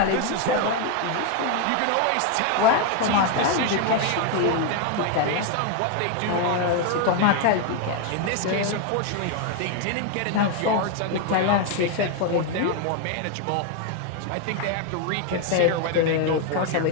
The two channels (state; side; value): different; both; correlation 0.01